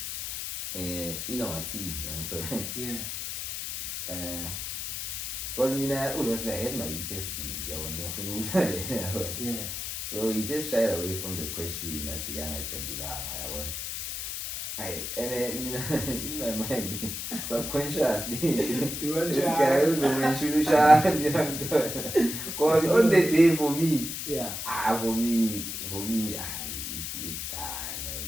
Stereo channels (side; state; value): left; noise; hiss, 5 dB below the sound